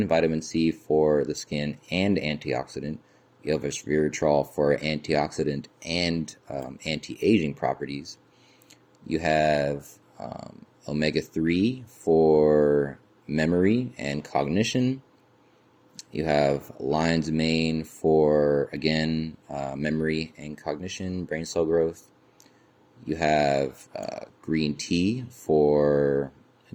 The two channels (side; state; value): both; identical; correlation 1.00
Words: vitamin C for the skin and antioxidant. You have resveratrol for antioxidant and anti-aging properties. You have omega-3 for memory and cognition. You have lion's mane for, again, memory and cognition, brain cell growth. You have green tea for,